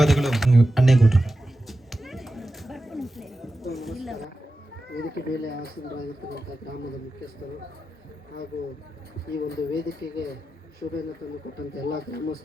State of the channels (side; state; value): both; normal; correlation 0.92